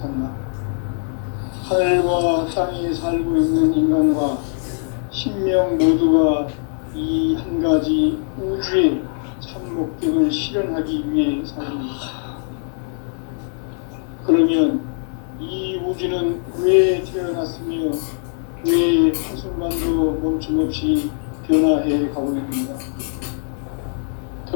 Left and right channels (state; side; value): silent; right; digital silence